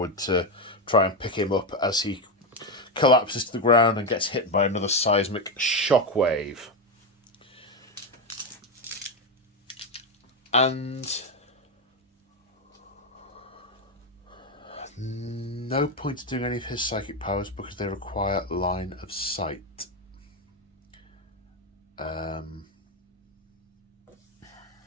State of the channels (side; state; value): both; normal; correlation 0.09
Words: to try and pick him up as he collapses to the ground and gets hit by another seismic shockwave. And no point in doing any of his psychic powers because they require line of sight. They're